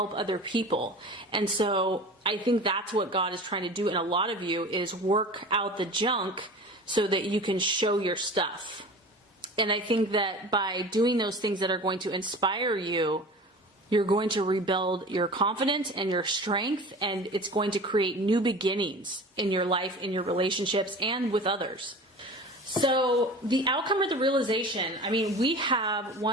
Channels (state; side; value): normal; both; correlation 0.37